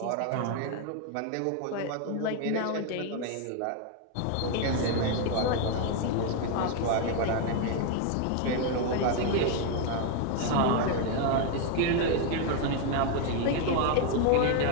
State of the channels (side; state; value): both; different; correlation 0.01